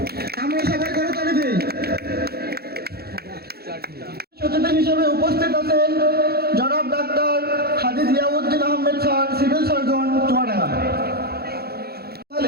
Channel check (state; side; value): late; left; 0.46 ms